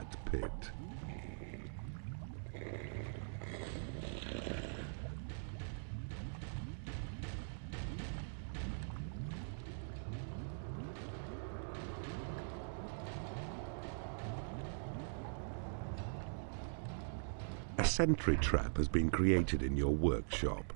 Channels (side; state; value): left; silent; digital silence